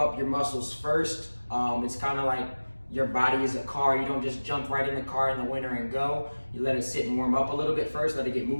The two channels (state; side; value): inverted; both; correlation -1.00